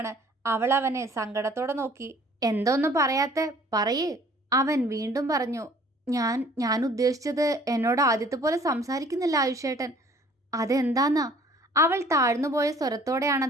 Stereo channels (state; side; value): normal; both; correlation 0.54